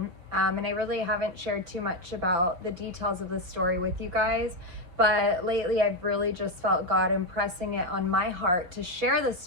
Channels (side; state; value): left; late; 5.7 ms